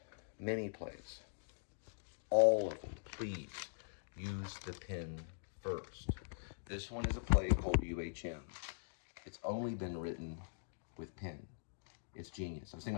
All of them, please use the pen first. This one is a play called UHM. It's only been written with pen. It's genius. I was thinking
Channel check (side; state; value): right; silent; digital silence